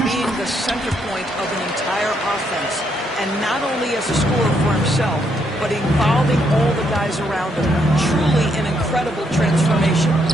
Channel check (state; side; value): normal; both; correlation 0.75